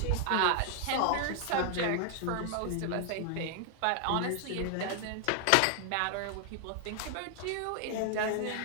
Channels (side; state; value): both; different; correlation 0.00